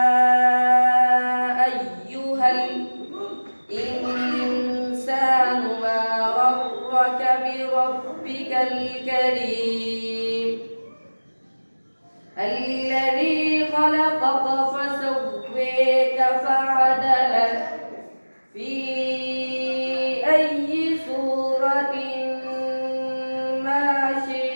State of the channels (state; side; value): inverted; both; correlation -1.00